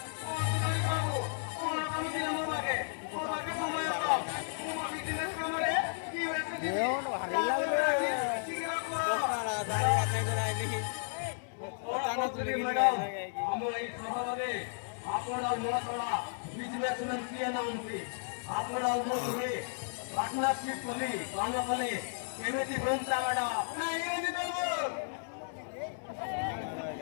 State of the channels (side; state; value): right; silent; 55 dB below the other